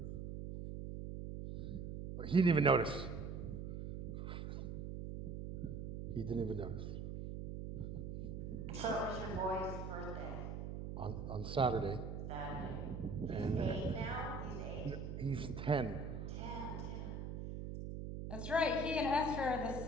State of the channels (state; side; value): noise; right; hum, 5 dB below the sound